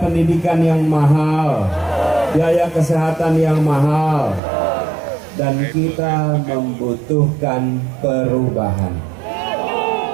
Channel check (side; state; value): left; drops out; at 4.4 s